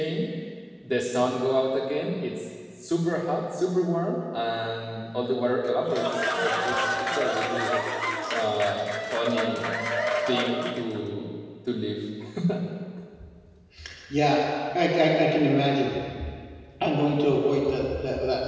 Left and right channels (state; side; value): identical; both; correlation 1.00